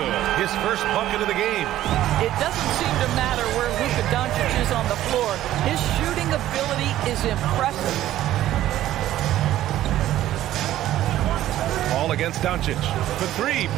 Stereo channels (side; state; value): left; quieter; 13.6 dB